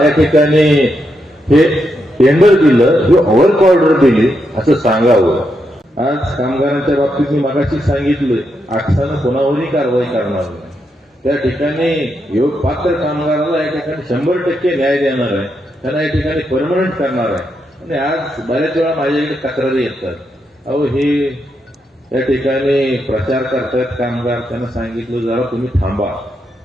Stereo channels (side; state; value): both; normal; correlation 0.82